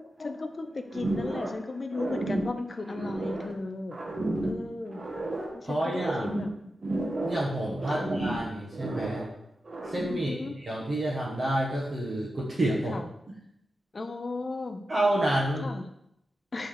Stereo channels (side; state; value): both; normal; correlation 0.90